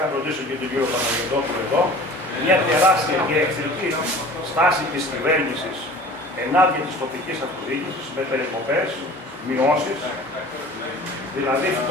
ρωτήσω και τον κύριο Παναγιωτόπουλο εδώ, μια τεράστια και εχθρική στάση της κυβέρνησης ενάντια της τοπικής αυτοδιοίκησης με περικοπές, μειώσεις δηλαδή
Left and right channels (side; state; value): both; normal; correlation 0.43